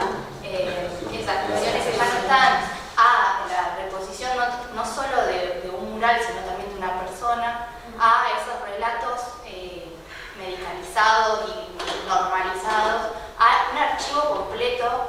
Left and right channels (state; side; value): identical; both; correlation 1.00